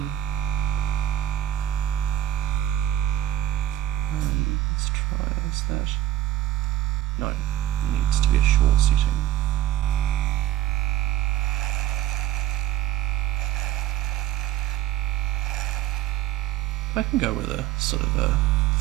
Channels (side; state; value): left; quieter; 13.1 dB